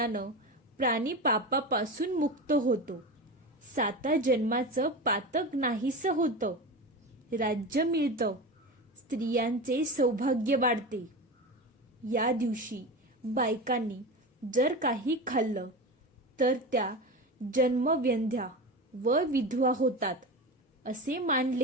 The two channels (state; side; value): normal; both; correlation 0.25